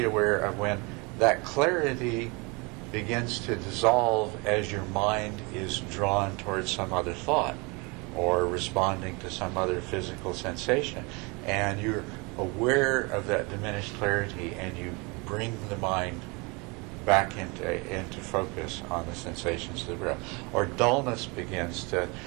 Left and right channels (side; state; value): left; quieter; 28.5 dB